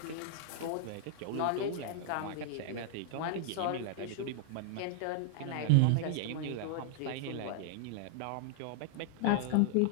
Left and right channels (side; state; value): both; different; correlation -0.01